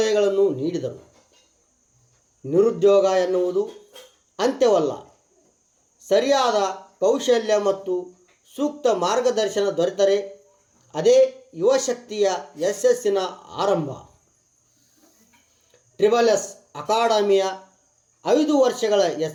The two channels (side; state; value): both; identical; correlation 1.00